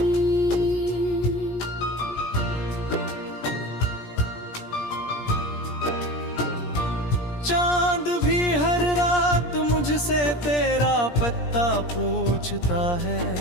चांद भी हर रात मुझसे तेरा पत्ता पूछता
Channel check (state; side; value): late; right; 17 ms